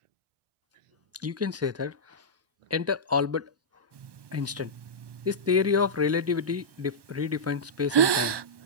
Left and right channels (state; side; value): late; left; 1.2 ms